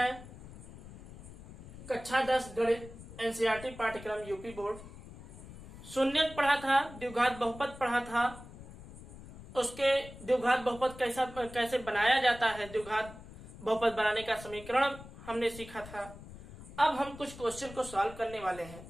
कक्षा 10 गणित एनसीईआरटी पाठ्यक्रम यूपी बोर्ड। शून्यक पढ़ा था, द्विघात बहुपद पढ़ा था, उसके द्विघात बहुपद कैसे बनाया जाता है, द्विघात बहुपद बनाने का समीकरण हमने सीखा था। अब हम कुछ क्वेश्चन को सॉल्व करने वाले हैं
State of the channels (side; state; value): left; noise; rumble, 16 dB below the sound